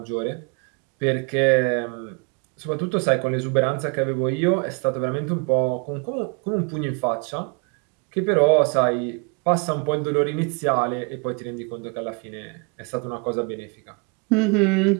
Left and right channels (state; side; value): quieter; left; 33.6 dB